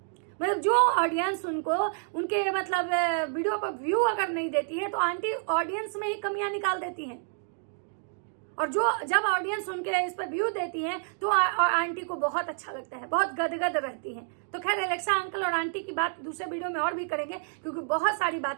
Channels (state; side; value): silent; left; digital silence